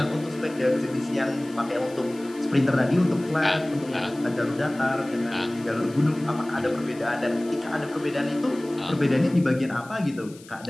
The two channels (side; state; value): left; noise; hiss, 22 dB below the sound